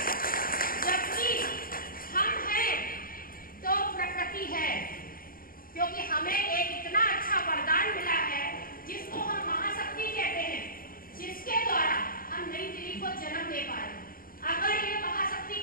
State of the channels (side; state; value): right; late; 0.42 ms